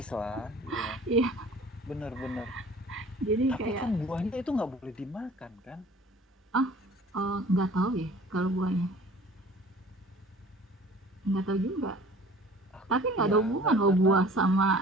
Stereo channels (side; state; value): both; normal; correlation 0.48